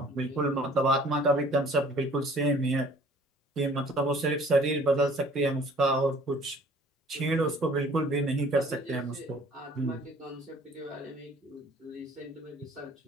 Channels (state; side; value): normal; both; correlation 0.53